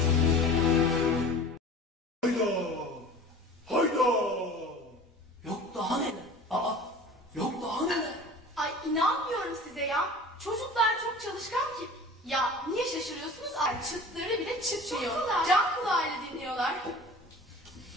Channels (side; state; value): both; normal; correlation 0.40